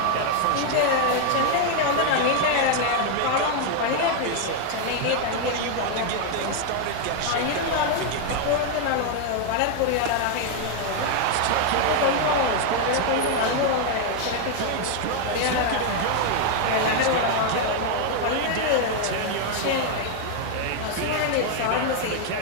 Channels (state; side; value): different; both; correlation 0.00